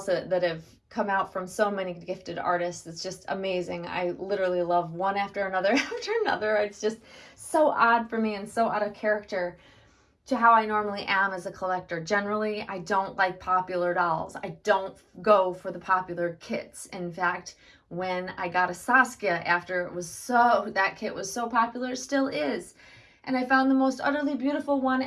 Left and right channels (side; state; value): both; identical; correlation 1.00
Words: that have come out from so many gifted artists, it's just amazing. I literally love one after another after another. It's just so odd for me and so out of character to how I normally am as a collector. Generally, I don't like popular dolls. I don't go for the popular kits. In fact, when I got a Saskia after that kit was so popular, still is, and I found the most utterly beautiful one,